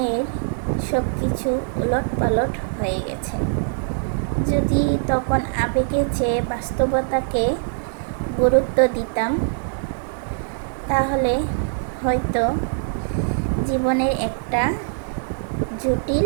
সব কিছু উলটপালট হয়ে গেছে। যদি তখন আবেগে চেয়ে বাস্তবতাকে গুরুত্ব দিতাম, তাহলে হয়তো জীবনের একটা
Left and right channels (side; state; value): left; silent; digital silence